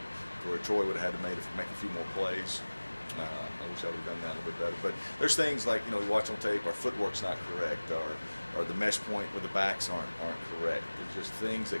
where Troy would have had to make a few more plays. I wish I would have done that a little bit better. But there's things like we watch on tape, our footwork's not correct, or the mesh point with the backs aren't correct. There's just things that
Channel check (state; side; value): inverted; both; correlation -1.00